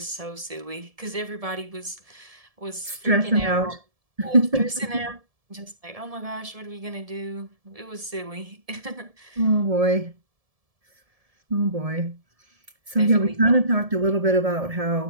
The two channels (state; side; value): late; left; 1.7 ms